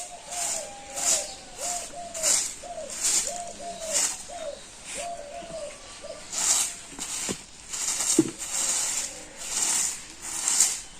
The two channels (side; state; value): both; identical; correlation 1.00